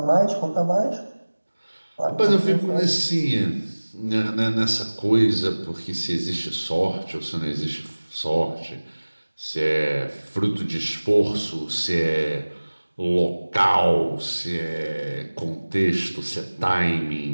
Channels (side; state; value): both; inverted; correlation -1.00